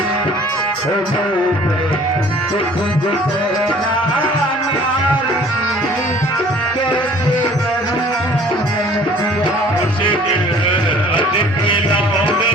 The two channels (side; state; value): both; normal; correlation 0.52